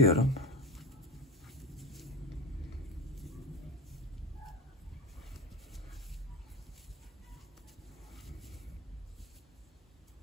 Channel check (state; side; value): normal; both; correlation 0.25